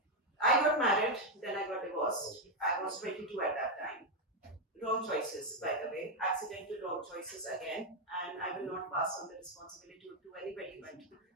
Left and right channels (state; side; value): normal; both; correlation 0.03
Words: I got married, then I got divorced. I was 22 at that time. Wrong choices, by the way, accidental wrong choices again, and I will not pass on the responsibility to anybody but